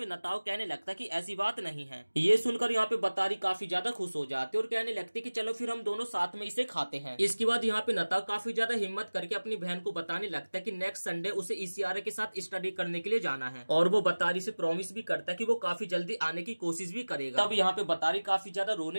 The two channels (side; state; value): both; inverted; correlation -1.00